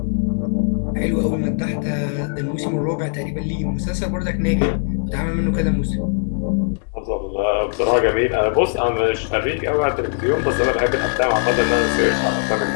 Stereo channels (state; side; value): silent; right; 61 dB below the other